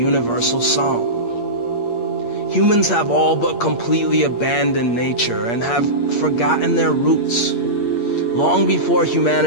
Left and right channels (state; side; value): late; right; 8.6 ms